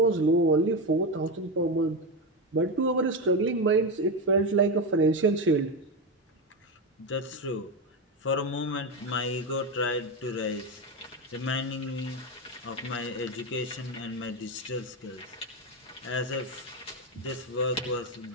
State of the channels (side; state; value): both; normal; correlation 0.13